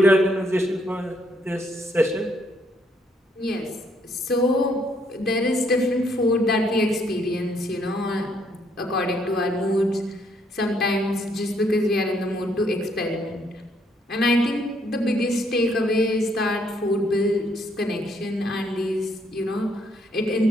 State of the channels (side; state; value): both; normal; correlation 0.70